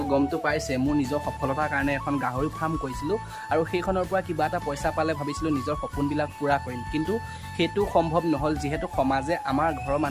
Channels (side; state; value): both; identical; correlation 1.00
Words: গমটো পাইছে মোৰ নিজৰ সফলতাৰ কাৰণে এখন গাহৰি ফাৰ্ম কৰিছিলোঁ আৰু সেইখনৰ পৰা কিবা এটা পইচা পালে ভাবিছিলোঁ নিজৰ সপোনবিলাক পূৰা কৰিম কিন্তু সেইটো সম্ভৱ নহ'ল যিহেতু সমাজে আমাৰ ঘৰৰ